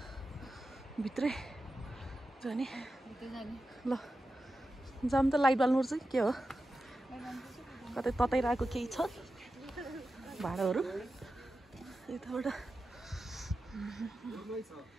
भित्रै जाने ल जाम त लाइट बाल्नुपर्छ कि के हो कतै तताइरहेको केही छ भाँडाहरू यताबाट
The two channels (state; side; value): normal; both; correlation 0.91